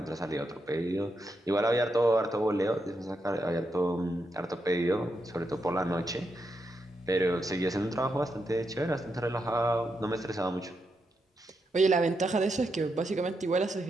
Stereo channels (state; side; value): normal; both; correlation 0.83